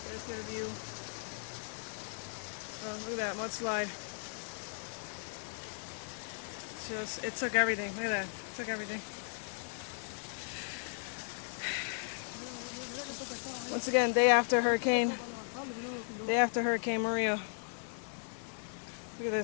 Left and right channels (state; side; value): silent; right; digital silence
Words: There's get a view. Look at that mudslide. It took everything. Look at that. It took everything. Once again, day after Hurricane Maria. Look at